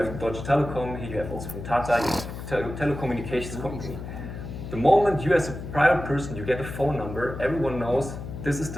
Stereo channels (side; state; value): left; noise; hum, 9 dB below the sound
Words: Deutsche Telekom, here you have also from Tata, you have telecommunications company. The moment you as a private person, you get a phone number, everyone knows this is